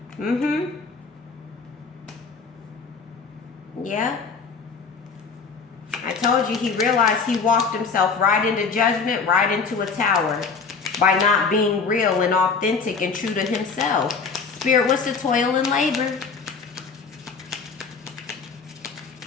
Yeah. I told you he realized he walked himself right into judgment, right into a tower by not being real and authentic and true to himself. Spirit, what's the toil and labor?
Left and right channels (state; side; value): quieter; right; 5.0 dB